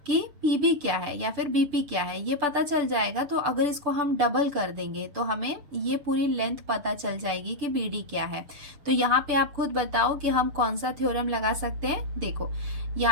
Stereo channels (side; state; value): left; late; 6.8 ms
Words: कि PB क्या है या फिर BP क्या है, ये पता चल जाएगा, तो अगर इसको हम डबल कर देंगे तो हमें ये पूरी लेंथ पता चल जाएगी कि BD क्या है। तो यहाँ पे आप खुद बताओ कि हम कौन सा थ्योरम लगा सकते हैं। देखो